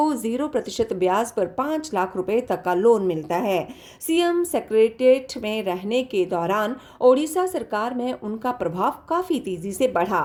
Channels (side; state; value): both; identical; correlation 1.00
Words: 0% ब्याज पर 5 लाख रुपए तक का लोन मिलता है। सीएम सेक्रेटेरिएट में रहने के दौरान ओडिशा सरकार में उनका प्रभाव काफी तेजी से बढ़ा।